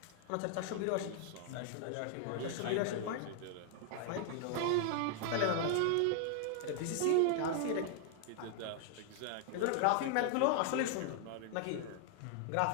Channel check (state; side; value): different; both; correlation 0.00